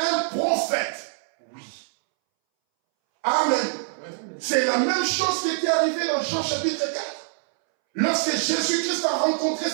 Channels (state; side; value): silent; left; 62 dB below the other